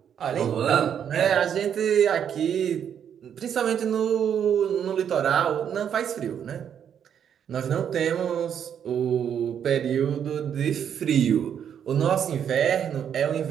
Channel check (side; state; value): left; quieter; 8.6 dB